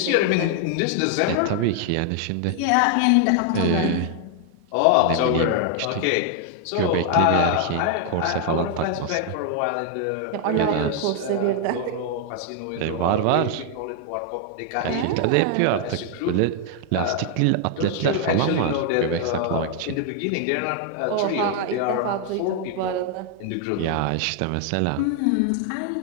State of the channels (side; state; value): both; different; correlation 0.00